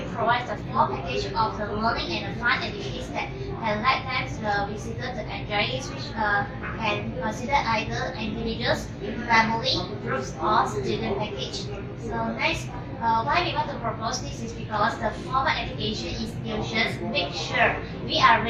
provide the full package of the learning and the fun activities that can let them the visitor to enjoy it, which can consider either individuals, family, groups, or student package. So next, why we want to propose this is because the formal education institutions make sure we are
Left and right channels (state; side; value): identical; both; correlation 1.00